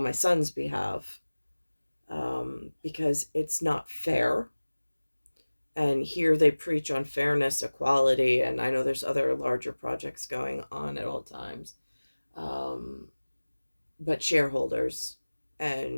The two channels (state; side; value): inverted; both; correlation -1.00